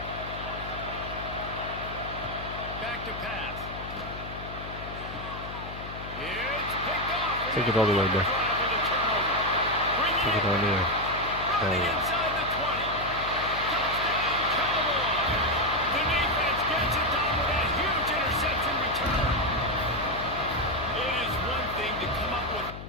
Back to pass. It's picked off. Take it all the way, bro. Take it all the way. Running inside the 20. Touchdown, Cowboys. The defense gets it done with that huge interception return. It is one thing to come up with.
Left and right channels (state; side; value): noise; left; hum, 11 dB below the sound